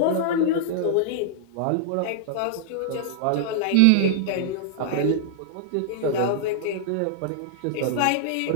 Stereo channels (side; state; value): both; different; correlation -0.01